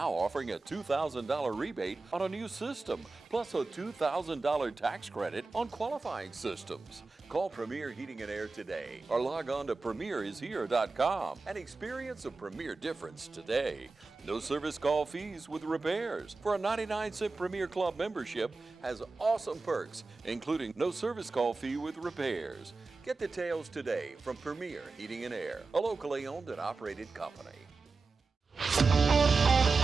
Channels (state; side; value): quieter; left; 3.9 dB